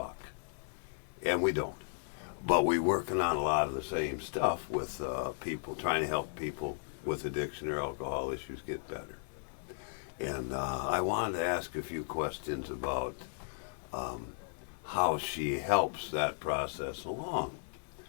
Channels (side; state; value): right; silent; 54 dB below the other